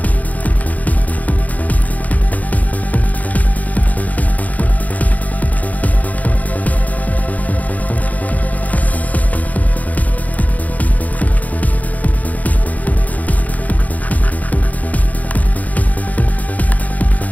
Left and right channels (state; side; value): late; right; 0.076 ms